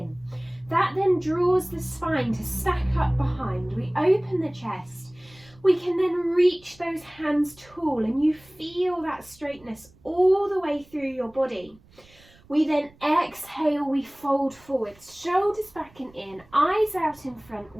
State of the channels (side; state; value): right; noise; rumble, 27 dB below the sound